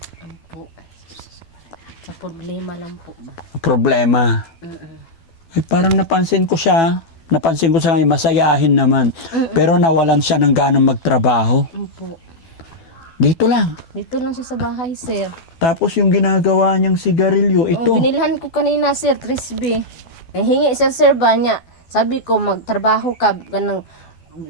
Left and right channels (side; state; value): right; late; 12 ms